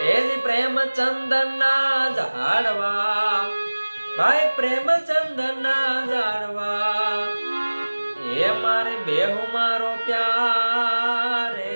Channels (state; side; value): inverted; both; correlation -1.00